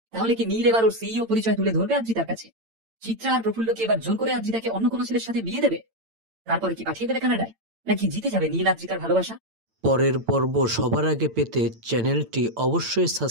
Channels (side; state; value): left; late; 8.9 ms